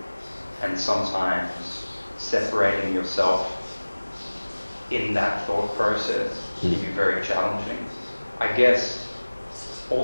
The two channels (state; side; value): inverted; both; correlation -1.00